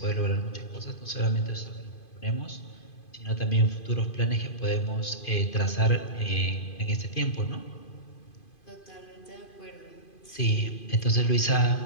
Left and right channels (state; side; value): late; right; 2.5 ms